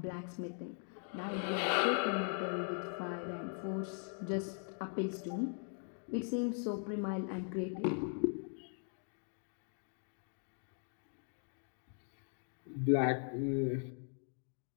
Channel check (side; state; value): right; silent; 51 dB below the other